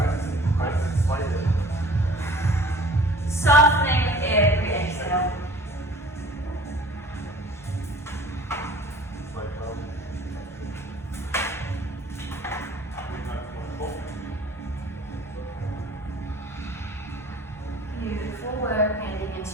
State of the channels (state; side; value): normal; both; correlation 0.47